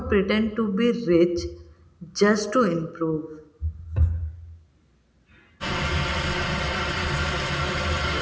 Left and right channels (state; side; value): identical; both; correlation 1.00